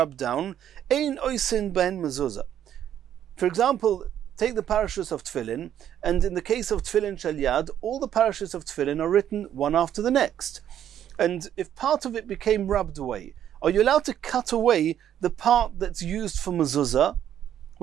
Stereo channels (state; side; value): quieter; left; 10.4 dB